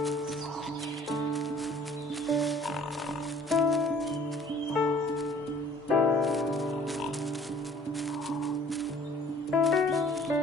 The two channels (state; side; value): normal; both; correlation 0.54